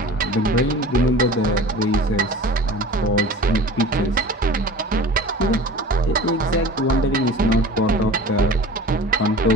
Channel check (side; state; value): both; normal; correlation 0.39